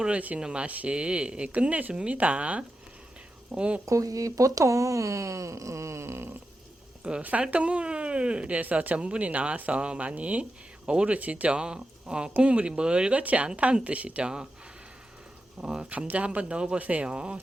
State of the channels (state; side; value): normal; both; correlation 0.90